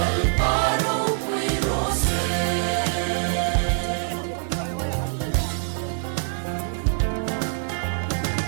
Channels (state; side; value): silent; left; digital silence